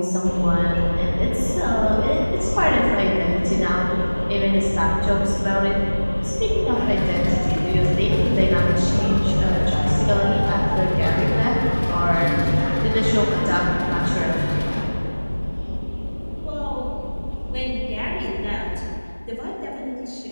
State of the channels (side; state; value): both; inverted; correlation -1.00